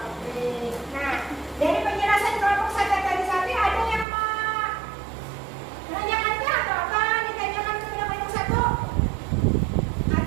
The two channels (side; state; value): left; drops out; at 4.0 s